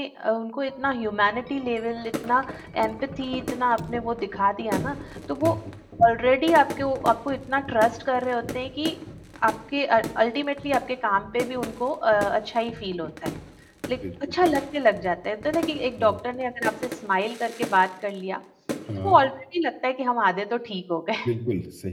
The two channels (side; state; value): both; identical; correlation 1.00